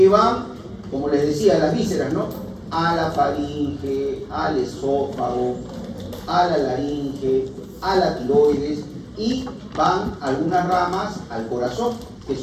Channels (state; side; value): identical; both; correlation 1.00